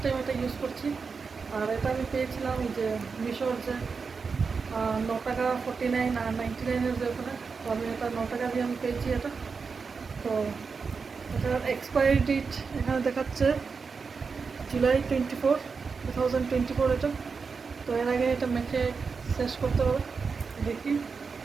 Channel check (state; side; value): quieter; left; 5.1 dB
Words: টাইম এটা ইউজ করছি। আর এটা আমি পেয়েছিলাম এই যে মিশোর যে 9 টাকা 49 আর 99-এর যে ওখানে। তো আমি এটা 9 টাকা দিয়ে আমি পেয়েছি এটা। তো এটার এক্সপায়ারি ডেট এখানে দেখাচ্ছে জুলাই 24, 2024 এটা। তো এর আগে এটা মেখে শেষ করতে হবে। দেখি